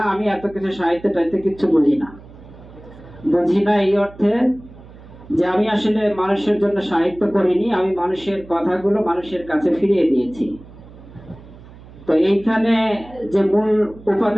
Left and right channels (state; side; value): noise; right; hum, 20 dB below the sound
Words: আমি এত কিছু সাহিত্য টাইতে কিছু বুঝি না। এই অর্থে যে আমি আসলে মানুষের জন্য সাহিত্য করিনি, আমি মানুষের কথাগুলো মানুষের কাছে ফিরিয়ে দিয়েছি। তো এইখানে যে মূল